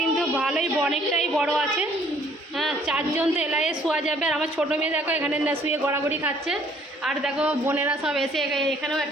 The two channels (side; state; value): both; normal; correlation 0.61